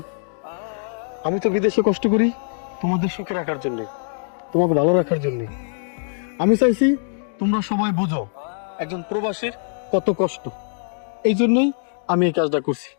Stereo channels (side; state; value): right; silent; digital silence